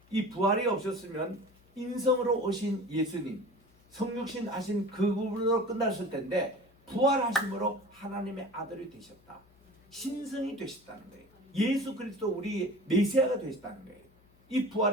이 부활이 없었으면 인성으로 오신 예수님, 성육신 하신 그분으로 끝났을 텐데 부활하심으로 하나님의 아들이 되셨다. 신성이 되셨다는 거예요. 예수 그리스도 우리 메시아가 되셨다는 거예요. 이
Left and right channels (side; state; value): left; noise; hum, 30 dB below the sound